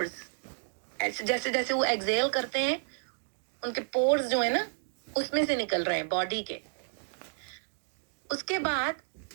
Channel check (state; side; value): silent; left; digital silence